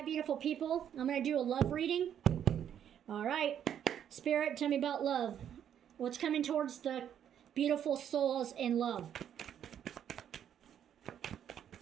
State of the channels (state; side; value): quieter; left; 9.5 dB